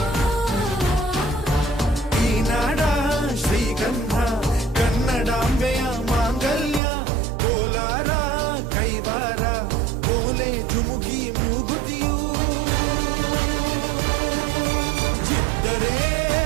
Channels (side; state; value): left; drops out; at 6.8 s